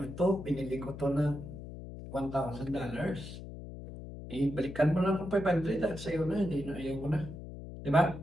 o to, binili ko to na $1,000. Balikan mo lang kung 500 sa'yo na, hindi na ayaw ko na. Diba?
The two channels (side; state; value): left; noise; hum, 11 dB below the sound